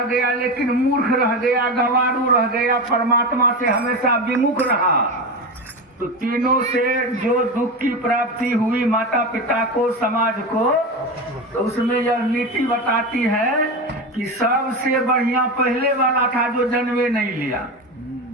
गया लेकिन मूर्ख रह गया, गंवारू रह गया, परमात्मा से हमेशा विमुख रहा, तो तीनों से जो दुख की प्राप्ति हुई माता पिता को, समाज को, तो उसमें यह नीति बताती है कि सबसे बढ़िया पहले वाला था जो जन्मे नहीं लिया,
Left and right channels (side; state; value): both; normal; correlation 0.20